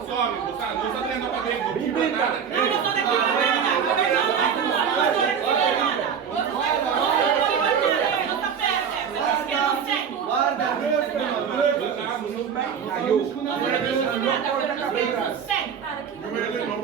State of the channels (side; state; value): left; quieter; 7.3 dB